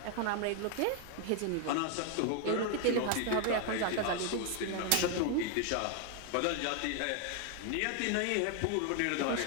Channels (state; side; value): different; both; correlation 0.01